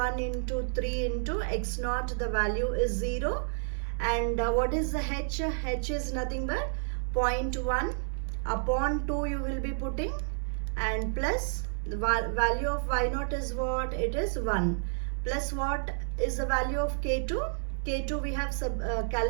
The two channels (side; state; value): left; silent; 58 dB below the other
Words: into 3 into x naught, the value is 0, and what is the h? H is nothing but 0.1 upon 2 you will be putting, and plus the value of y naught is what? It is 1, plus what is the value of k2? K2 we have